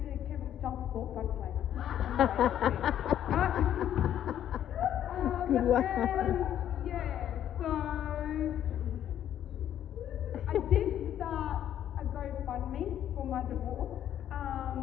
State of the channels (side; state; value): right; quieter; 10.7 dB